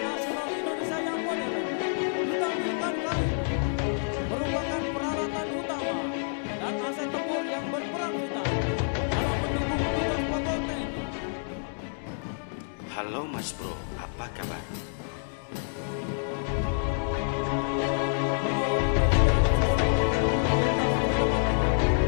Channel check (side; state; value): right; silent; digital silence